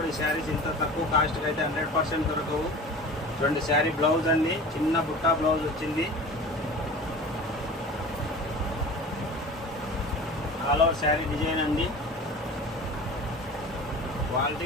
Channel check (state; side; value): normal; both; correlation 0.38